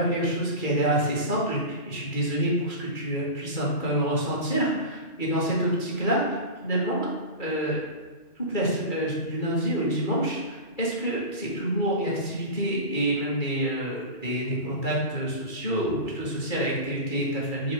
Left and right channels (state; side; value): late; right; 2.4 ms